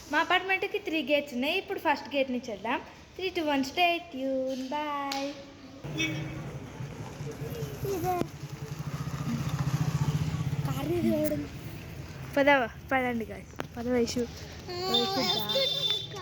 మా అపార్ట్మెంట్కి 3 గేట్స్ ఉన్నాయి. ఇప్పుడు ఫస్ట్ గేట్ నుంచి వెళ్దాం. 3, 2, 1 స్టే ట్యూన్. బాయ్. పదండి గాయ్, వయసు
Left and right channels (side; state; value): both; identical; correlation 1.00